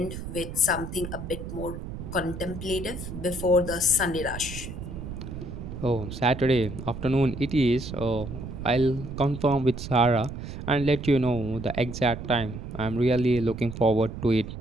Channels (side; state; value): right; noise; rumble, 8 dB below the sound